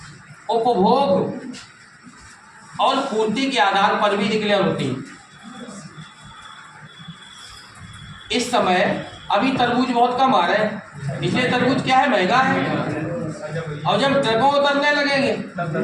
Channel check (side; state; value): both; identical; correlation 1.00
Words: उपभोग और पूर्ति के आधार पर भी डिक्लेयर होती है। इस समय अभी तरबूज बहुत कम आ रहे हैं, इसलिए तरबूज क्या है, महंगा है। और जब ट्रकों उतरने लगेंगे